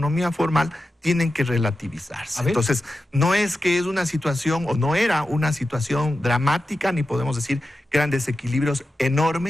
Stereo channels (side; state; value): both; normal; correlation 0.91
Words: formal tienen que relativizarse. Entonces, no es que es una situación, o no era una situación dramática, ni podemos decir que eran desequilibrios